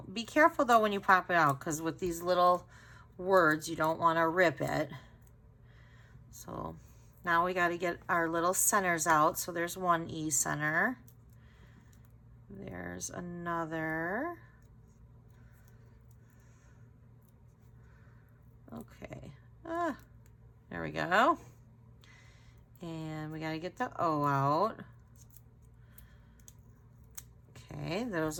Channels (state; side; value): identical; both; correlation 1.00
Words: Be careful though when you pop it out, because with these little words, you don't want to rip it. So now we got to get our little centers out. So there's one E center. There's another. Okay. There we go. And we got to get the O out. Okay,